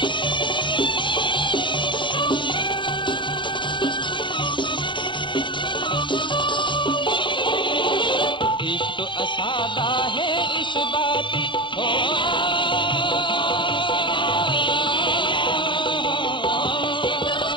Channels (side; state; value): right; late; 0.23 ms